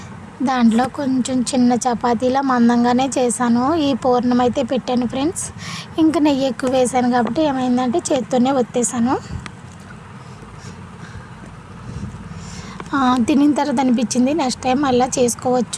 దాంట్లో కొంచెం చిన్న చపాతీలా మందంగానే చేశాను. ఈ పూర్ణం అయితే పెట్టాను ఫ్రెండ్స్. ఇంకా నెయ్యి ఎక్కువ వేసాను కాబట్టి ఏమైందంటే చేత్తోనే ఒత్తేసాను. తినిన తర్వాత అనిపించింది నెక్స్ట్ టైం అలా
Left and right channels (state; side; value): identical; both; correlation 1.00